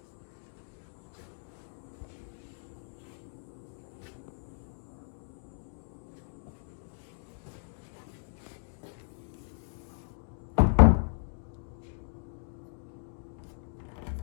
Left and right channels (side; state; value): right; silent; digital silence